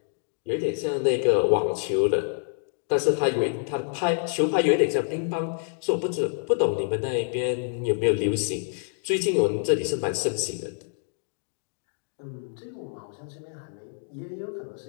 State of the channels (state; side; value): silent; right; digital silence